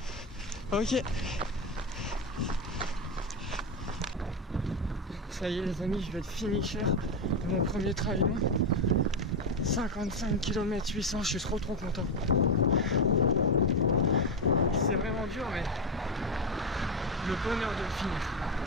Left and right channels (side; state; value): both; normal; correlation 0.12